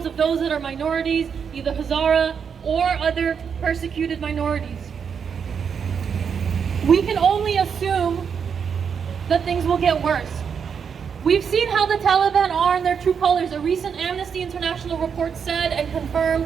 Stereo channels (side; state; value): left; quieter; 6.8 dB